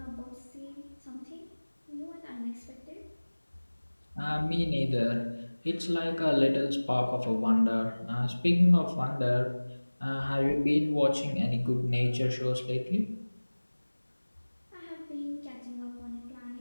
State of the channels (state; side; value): inverted; both; correlation -1.00